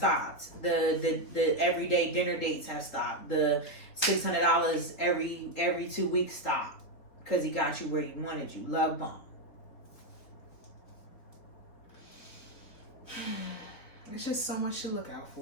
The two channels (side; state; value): right; late; 3.8 ms